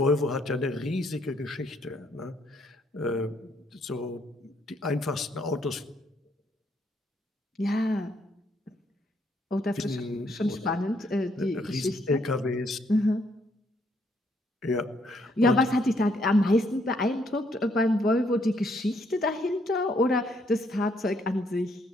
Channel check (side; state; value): both; normal; correlation 0.71